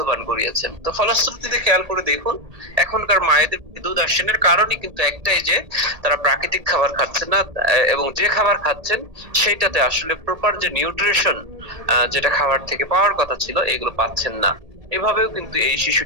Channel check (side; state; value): left; late; 1.7 ms